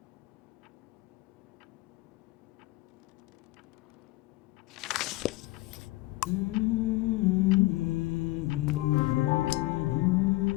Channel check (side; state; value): right; quieter; 20.3 dB